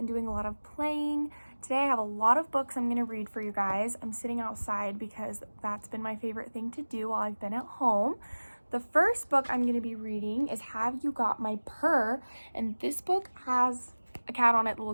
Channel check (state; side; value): inverted; both; correlation -1.00